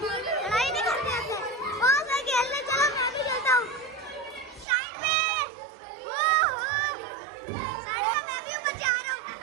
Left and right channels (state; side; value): drops out; left; at 4.7 s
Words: लड़ाई नहीं करते होते। बहुत सारे खेलने, चलो मैं भी खेलता हूँ। साइड में, साइड में मैं भी ऊपर जा रहा हूँ।